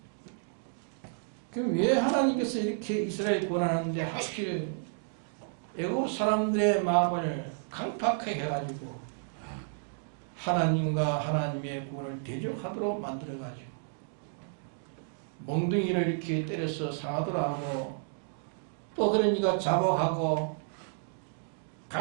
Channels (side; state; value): left; silent; digital silence